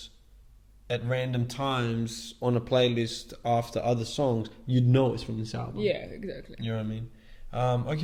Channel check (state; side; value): identical; both; correlation 1.00